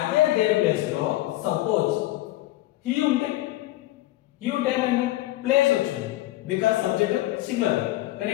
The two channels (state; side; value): quieter; right; 16.8 dB